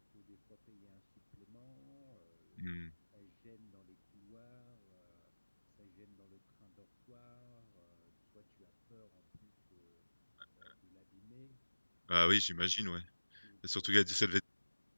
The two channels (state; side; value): inverted; both; correlation -1.00